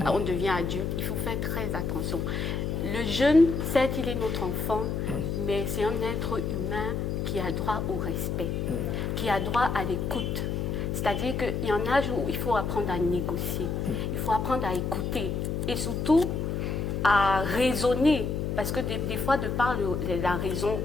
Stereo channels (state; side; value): noise; left; hum, 1 dB below the sound